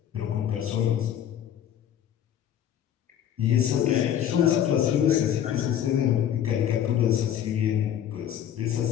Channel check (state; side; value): quieter; right; 10.1 dB